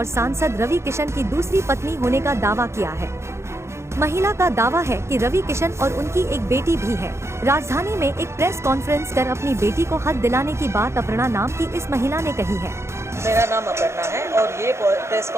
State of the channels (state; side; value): late; left; 0.13 ms